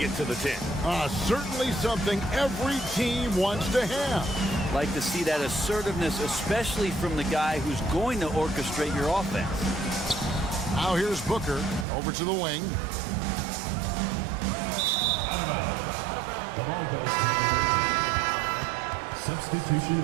to the 10. Certainly something every team wants to have. Like to see that assertiveness, especially from the guy who's going to orchestrate your offense. Now here's Booker over to the wing. The ball goes to the away team. Substitution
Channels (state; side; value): drops out; left; at 11.9 s